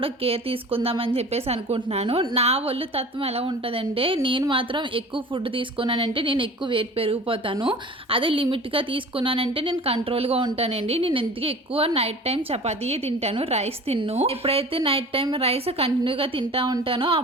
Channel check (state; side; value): normal; both; correlation 0.41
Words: కేర్ తీసుకుందామని చెప్పేసి అనుకుంటున్నాను. నా ఒళ్ళు తత్వం ఎలా ఉంటుందంటే, నేను మాత్రం ఎక్కువ ఫుడ్ తీసుకున్నానంటే నేను ఎక్కువ వెయిట్ పెరిగిపోతాను. అదే లిమిట్గా తీసుకున్నానంటే నేను కంట్రోల్గా ఉంటానండి. నేను ఎందుకు ఎక్కువ నైట్ టైం చపాతీయే తింటాను, రైస్ తిన్ను. ఎప్పుడైతే నైట్ టైం రైస్ కంటిన్యూగా తింటా ఉంటానో